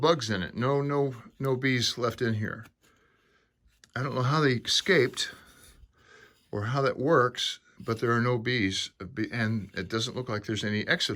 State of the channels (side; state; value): both; identical; correlation 1.00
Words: in it. No bees left in here. I don't know how they escaped or how that works, but there are no bees, and it doesn't look like there's any